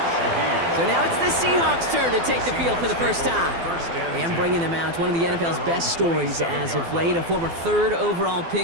So now it's the Seahawks' turn to take the field for the first time. And bringing them out, one of the NFL's best stories as of late, a former 3rd overall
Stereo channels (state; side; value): late; left; 12 ms